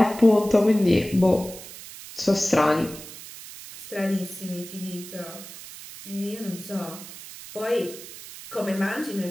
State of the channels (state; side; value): noise; right; hiss, 14 dB below the sound